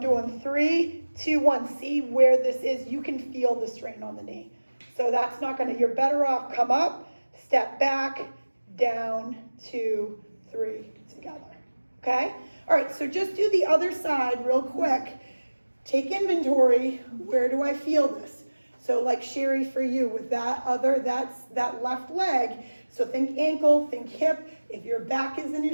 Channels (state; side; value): inverted; both; correlation -1.00